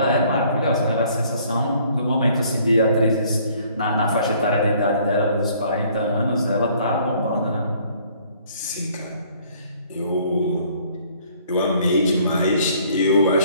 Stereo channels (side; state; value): both; inverted; correlation -0.60